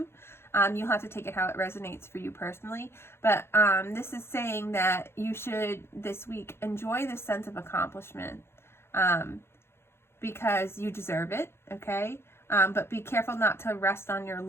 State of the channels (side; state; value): right; late; 0.12 ms